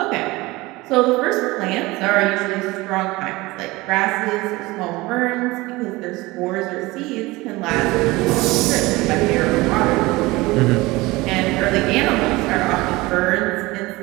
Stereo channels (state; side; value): quieter; left; 21.2 dB